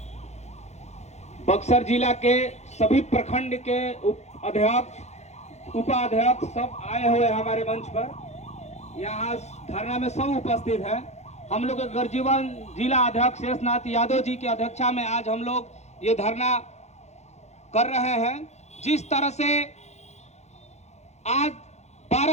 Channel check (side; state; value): right; late; 0.32 ms